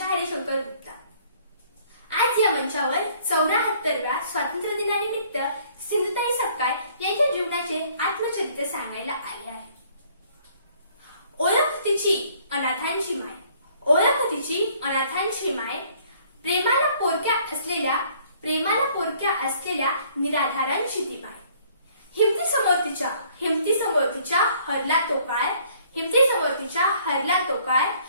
हरिशंकर गुप्ता। आज या मंचावर 74व्या स्वातंत्र्य दिनानिमित्त सिंधुताई सपकाळ यांच्या जीवनाचे आत्मचरित्र सांगायला आले आहे। ओळख तिची अनाथांची माय, ओळख तिची अनाथांची माय, प्रेमाला पोरक्या असलेल्या निराधारांची ती माय। हिमती समोर तिच्या हरला तो काळ,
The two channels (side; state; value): both; inverted; correlation -0.60